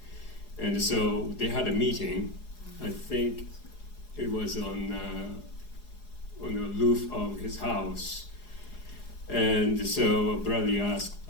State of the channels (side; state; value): right; late; 4.8 ms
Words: and so they had a meeting. I think it was on the roof of his house, and so Bradley asked